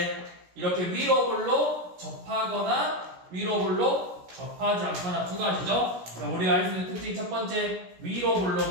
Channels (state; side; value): late; left; 17 ms